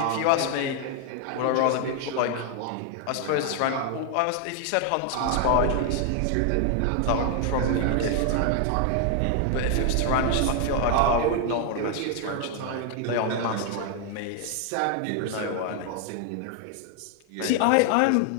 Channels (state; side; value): different; both; correlation 0.00